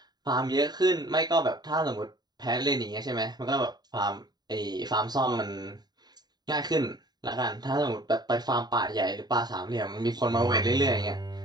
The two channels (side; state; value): left; late; 0.20 ms